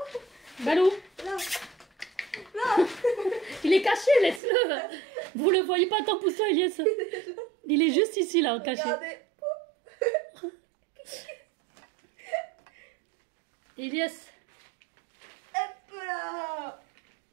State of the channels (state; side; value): drops out; left; at 4.4 s